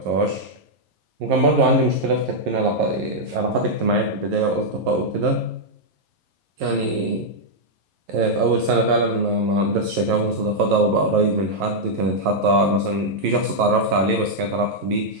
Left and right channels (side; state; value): left; late; 11 ms